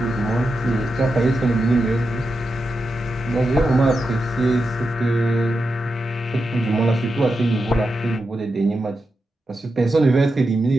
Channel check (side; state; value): both; normal; correlation 0.88